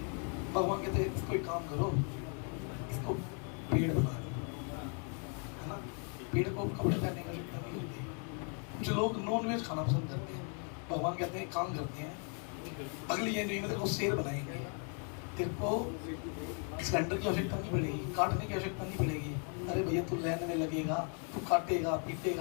भगवान कहते हैं इसको एक काम करो, इसको पेड़ बना दो, है ना, पेड़ को कपड़े पहनने की आवश्यकता नहीं होती। कुछ लोग नॉन वेज खाना पसंद करते हैं, भगवान कहते हैं काम करते हैं, अगली जनवरी में तेरे को शेर बनाएंगे, तेरे को सिलेंडर की आवश्यकता नहीं पड़ेगी, काटने की आवश्यकता नहीं पड़ेगी। अरे भैया तू लाइन में लगेगा, तू काटेगा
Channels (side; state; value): right; quieter; 39.6 dB